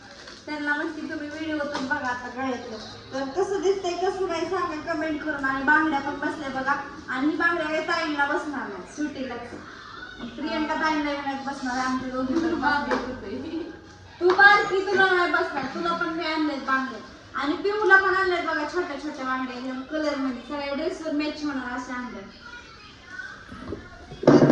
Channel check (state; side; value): identical; both; correlation 1.00